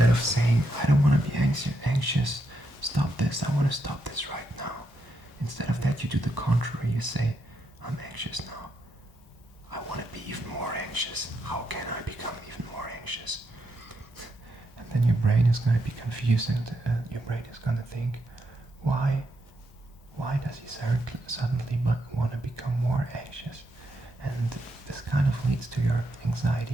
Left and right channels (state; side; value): normal; both; correlation 0.81